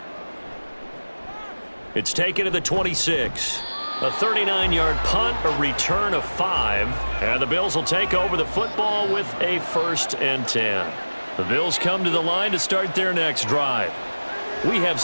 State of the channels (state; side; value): inverted; both; correlation -1.00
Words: It's taken to the 26. A 39-yard punt, a return of 5, and the Bills will take over the football with a 1st and 10. The Bills come to the line to start their next drive. We have